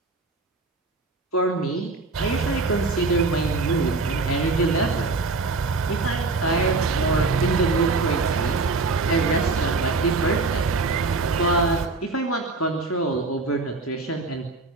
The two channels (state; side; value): quieter; left; 3.7 dB